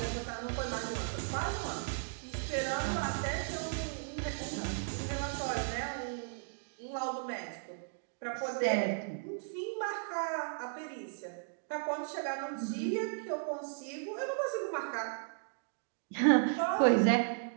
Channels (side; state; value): left; silent; digital silence